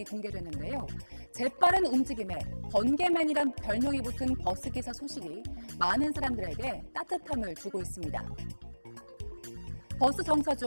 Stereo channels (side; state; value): both; inverted; correlation -1.00